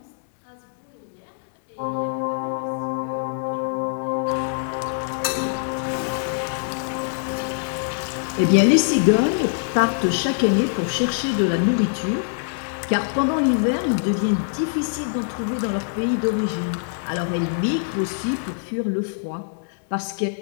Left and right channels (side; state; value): right; silent; digital silence